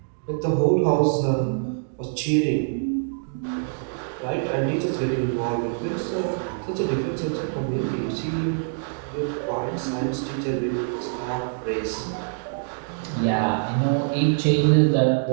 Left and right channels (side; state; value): left; silent; digital silence